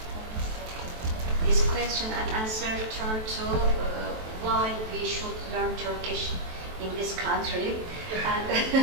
This question and answer turn to why we should learn Turkish in this country.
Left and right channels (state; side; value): late; left; 23 ms